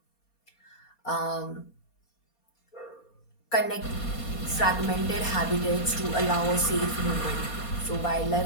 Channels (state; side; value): late; right; 4.2 ms